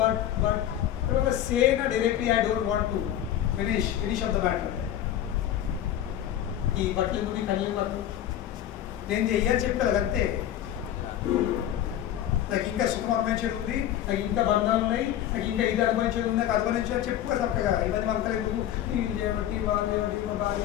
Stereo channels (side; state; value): right; quieter; 11.5 dB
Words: say no directly I don't want to, finish of the matter. ఈ బట్టలు ఎందుకు, ఈ కళ్ళు బట్టలు నేను చెయ్యాలని చెప్తాను అంతే. నాకు ఇంకా సుఖం అనుభవించేది ఉంది, నాకు ఇంకా బంధాలు ఉన్నాయి, నాకు ఇంకా ఇది అనుభవించేది ఉంది, నాకు అనుభవించేది చెప్పుకో తప్పగా. ఇవన్నీ వంకలేదు, వీళ్ళు చేయబట్టి, వాళ్ళు చేయబట్టి, మా